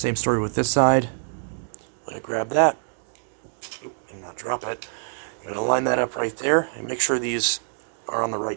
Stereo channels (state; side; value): silent; left; 62 dB below the other